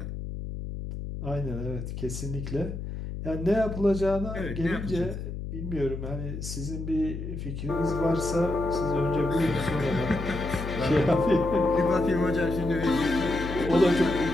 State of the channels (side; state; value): left; noise; hum, 7 dB below the sound